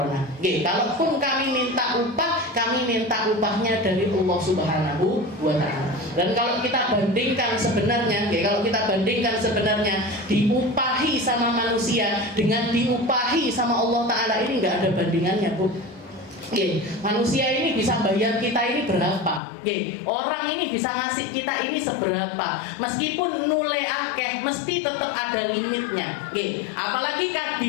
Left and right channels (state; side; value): drops out; right; at 19.4 s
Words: Kalaupun kami minta upah, kami minta upahnya dari Allah Subhanahu wa taala. Dan kalau kita bandingkan sebenarnya, diupahi sama manusia dengan diupahi sama Allah taala, ini enggak ada bandingannya, Bu. Manusia ini bisa bayar kita ini berapa? Orang ini bisa ngasih kita ini seberapa? Meskipun nule akeh, mesti tetap ada limitnya. Apalagi kan